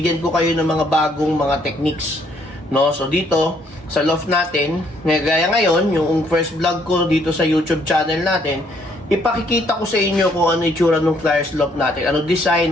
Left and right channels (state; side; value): normal; both; correlation 0.67